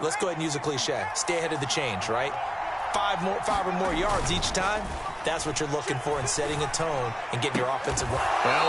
Let's go ahead and use a cliche. Stay ahead of the change, right? 5 or more yards each time. That's what you're looking for in setting a tone and getting your offensive. Well,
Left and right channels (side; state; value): both; identical; correlation 1.00